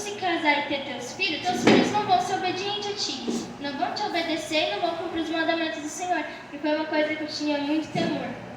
casar e ter teus filhos não vão ser obedientes a ti. Não vão te obedecer e não vão cumprir os mandamentos do Senhor. E foi uma coisa que eu tinha muito temor.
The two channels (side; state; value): both; identical; correlation 1.00